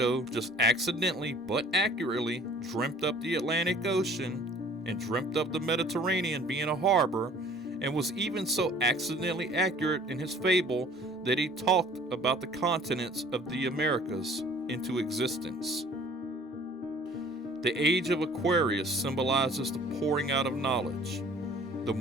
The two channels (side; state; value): both; normal; correlation 0.52